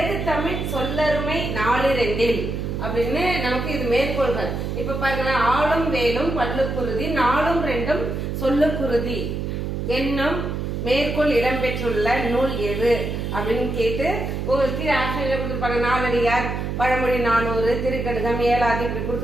தமிழ் சொல்லருமை நாலு ரெண்டில் அப்படின்னு நமக்கு இது மேற்கோள்கள். இப்ப பாருங்க, ஆளும் வேலும் பல்லுக்குருதி, நாளும் ரெண்டும் சொல்லுக்குருதி என்னும் மேற்கோள் இடம்பெற்றுள்ள நூல் எது அப்படின்னு கேட்டு உங்களுக்கு ஆப்ஷன்ல கொடுத்துருப்பாங்க. நாலடியார், பழமொழி 400, திருக்கடுகம், ஏழாதி இப்படி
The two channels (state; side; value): noise; right; hum, 3 dB below the sound